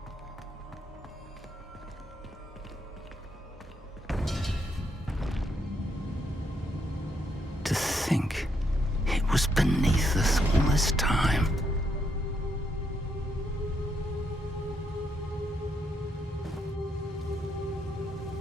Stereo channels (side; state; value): both; normal; correlation 0.77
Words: To think it was beneath us all this time.